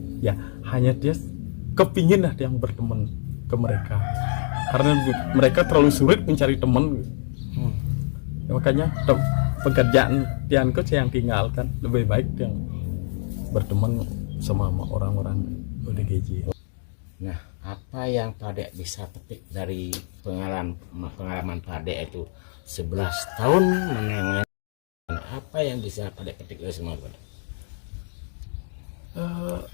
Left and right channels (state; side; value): silent; right; digital silence